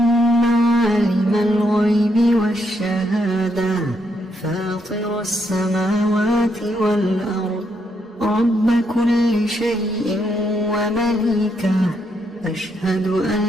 عالم الغيب والشهادة فاطر السماوات والأرض رب كل شيء ومليكه، أشهد أن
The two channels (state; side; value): normal; both; correlation 0.77